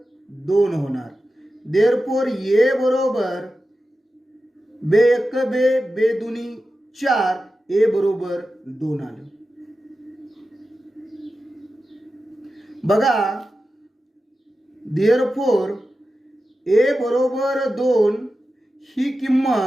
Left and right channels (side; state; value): both; normal; correlation 0.92